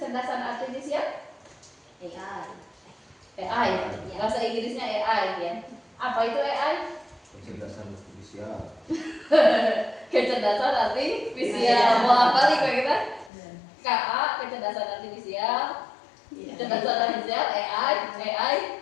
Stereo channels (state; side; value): drops out; right; at 13.3 s